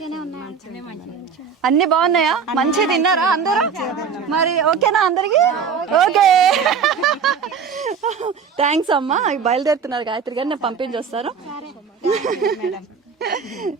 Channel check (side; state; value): left; quieter; 6.4 dB